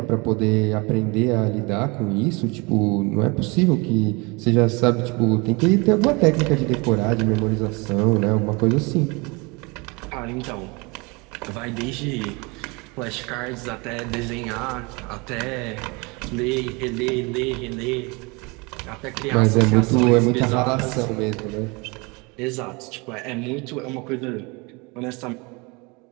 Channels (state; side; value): quieter; left; 27.7 dB